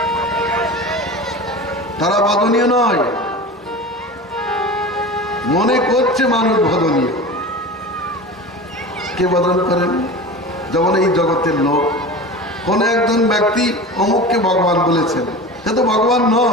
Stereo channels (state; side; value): normal; both; correlation 0.33